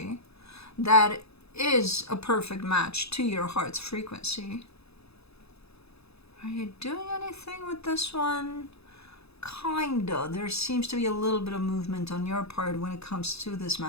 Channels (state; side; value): late; right; 0.79 ms